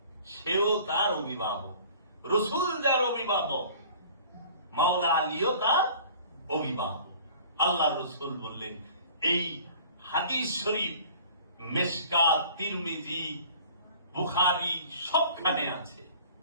সেও তার অভিভাবক। রাসূল যার অভিভাবক, মাওলা আলীও তার অভিভাবক। আল্লাহ রাসূল বললেন, এই হাদিস শরীফ মিশকাত, তিরমিজি, বুখারী সবখানে আছে,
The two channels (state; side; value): inverted; both; correlation -0.47